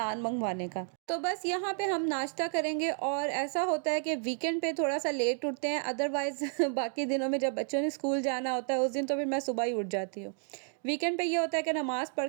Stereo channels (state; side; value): silent; left; 57 dB below the other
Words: मंगवाने का। तो बस यहाँ पे हम नाश्ता करेंगे और ऐसा होता है कि वीकेंड पे थोड़ा सा लेट उठते हैं, अदरवाइज़ बाकी दिनों में जब बच्चों ने स्कूल जाना होता है उस दिन तो फिर मैं सुबह ही उठ जाती हूँ। वीकेंड पे ये होता है कि नमाज़ पढ़